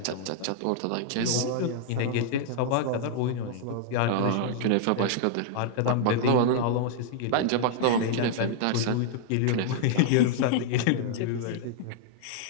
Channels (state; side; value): different; both; correlation -0.01